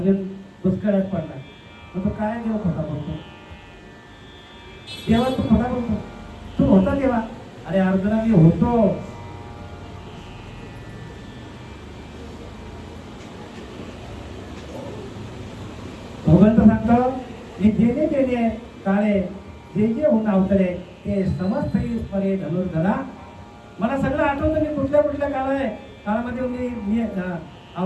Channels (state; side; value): identical; both; correlation 1.00